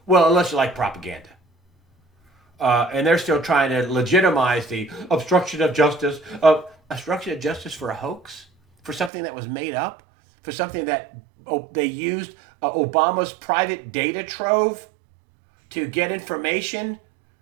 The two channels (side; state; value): left; drops out; at 9.1 s